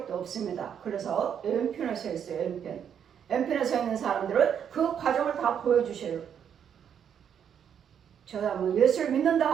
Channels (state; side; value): quieter; left; 8.4 dB